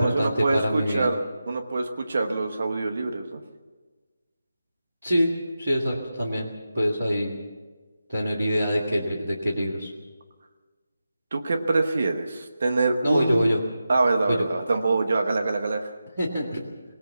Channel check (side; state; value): both; inverted; correlation -0.91